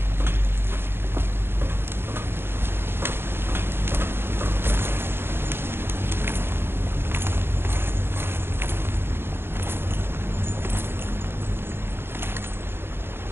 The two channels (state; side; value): late; left; 0.11 ms